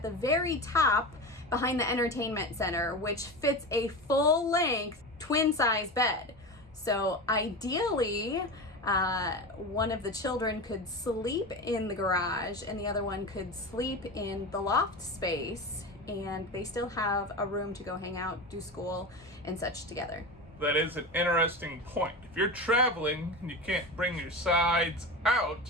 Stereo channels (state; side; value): normal; both; correlation 0.25